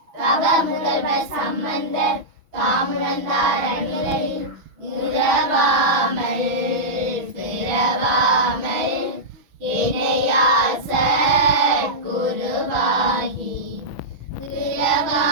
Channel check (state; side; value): late; left; 6.0 ms